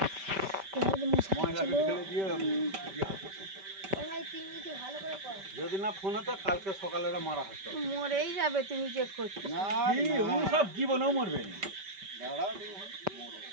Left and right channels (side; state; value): left; late; 5.1 ms